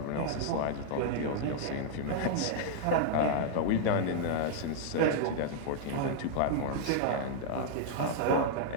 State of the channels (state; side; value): different; both; correlation -0.01